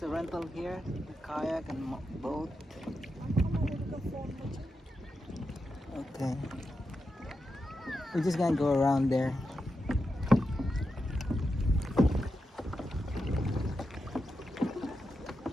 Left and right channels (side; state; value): both; normal; correlation 0.88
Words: a rental here, a kayak and boat. Okay. We're just gonna go around there.